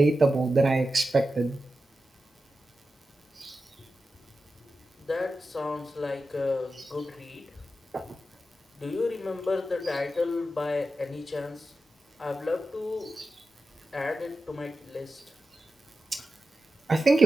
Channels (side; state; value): both; normal; correlation 0.92